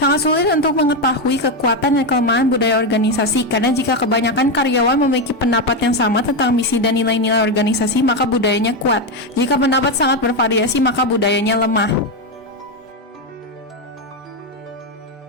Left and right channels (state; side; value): normal; both; correlation 0.09